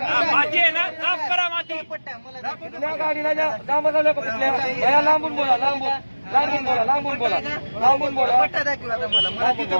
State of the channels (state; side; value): inverted; both; correlation -1.00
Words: माती आहे ना, साफ करा माती. कुठल्या गाडीला लांबून बोला, लांबून बोला. पट्टा दाखव आता मला. मला